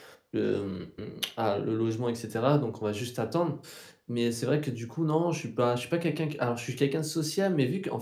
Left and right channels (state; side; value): identical; both; correlation 1.00